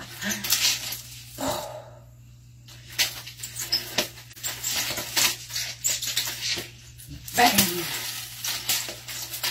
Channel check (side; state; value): both; identical; correlation 1.00